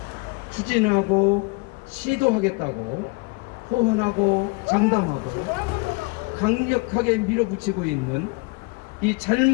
추진하고 시도하겠다고 호언하고 장담하고 강력하게 밀어붙이고 있는 이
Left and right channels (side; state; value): right; quieter; 27.9 dB